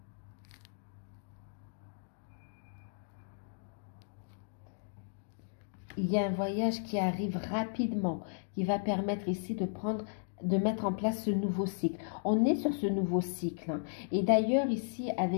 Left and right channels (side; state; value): right; silent; digital silence